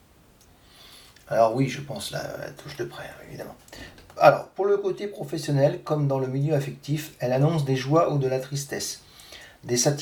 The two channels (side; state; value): both; identical; correlation 1.00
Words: Alors oui, je pense la touche de près, évidemment. Alors, pour le côté professionnel, comme dans le milieu affectif, elle annonce des joies ou de la tristesse, des